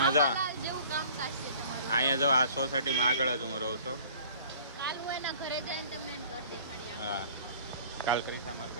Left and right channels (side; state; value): both; inverted; correlation -0.49